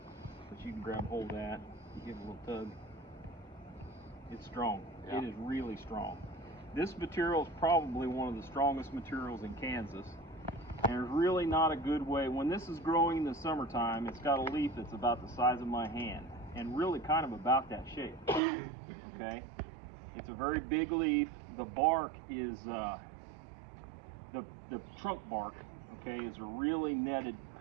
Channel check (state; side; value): drops out; left; at 18.4 s